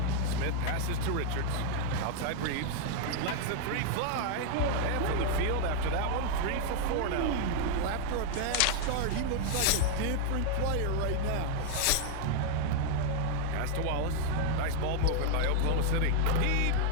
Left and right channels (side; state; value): both; different; correlation 0.00